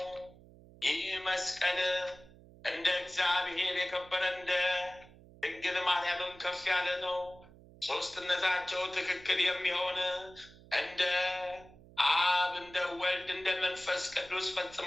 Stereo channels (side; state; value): right; noise; hum, 22 dB below the sound